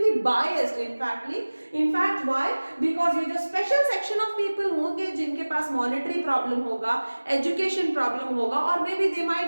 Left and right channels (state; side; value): inverted; both; correlation -1.00